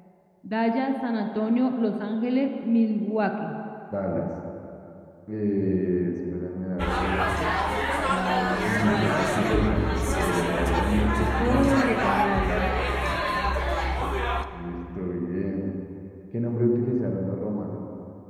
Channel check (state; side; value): identical; both; correlation 1.00